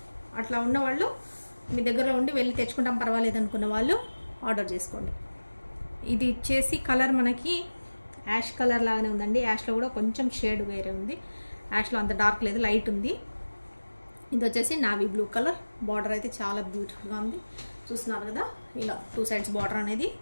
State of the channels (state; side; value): inverted; both; correlation -1.00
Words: అట్లా ఉన్నవాళ్ళు మీ దగ్గరలో ఉండి వెళ్ళి తెచ్చుకుంటాం పర్వాలేదు అనుకున్న వాళ్ళు ఆర్డర్ చేసుకోండి. ఇది వచ్చేసి కలర్ మనకి యాష్ కలర్ లాగానే ఉందండి. యాష్లో కూడా కొంచెం షేడ్ వేరే ఉంది. యాష్లో అంత డార్క్ లేదు, లైట్ ఉంది. ఇది వచ్చేసి నావీ బ్లూ కలర్. బార్డర్ అయితే చాలా బ్యూటిఫుల్గా ఉంది. చూస్తున్నారు కదా, ఇలా 2 సైడ్స్ బార్డర్ అనేది